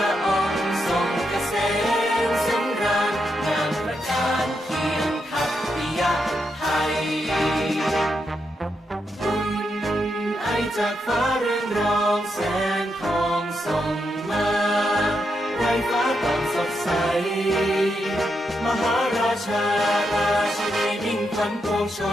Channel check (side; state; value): both; normal; correlation 0.83